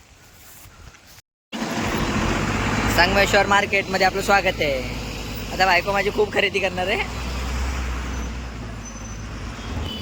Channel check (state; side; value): identical; both; correlation 1.00